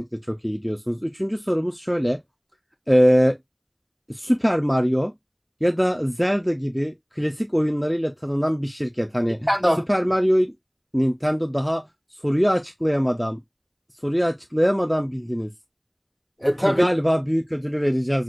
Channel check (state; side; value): identical; both; correlation 1.00